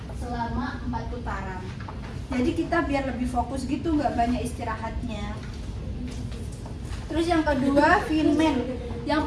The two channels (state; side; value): identical; both; correlation 1.00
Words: selama 4 putaran. Jadi kita biar lebih fokus gitu, nggak banyak istirahatnya. Terus yang kedua, Feynman. Yang